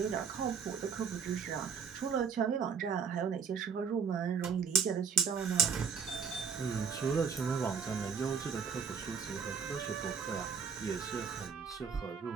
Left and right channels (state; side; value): quieter; left; 6.3 dB